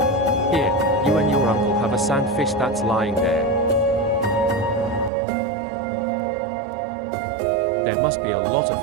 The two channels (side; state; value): left; drops out; at 5.1 s